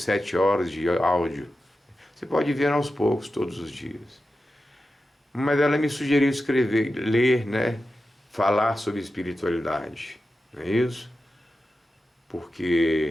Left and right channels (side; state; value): both; normal; correlation 0.92